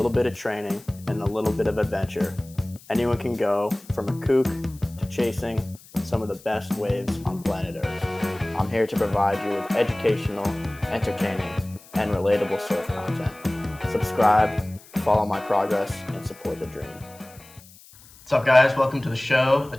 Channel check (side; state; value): left; noise; hiss, 23 dB below the sound